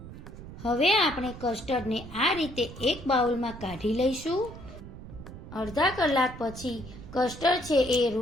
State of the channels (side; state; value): right; noise; rumble, 13 dB below the sound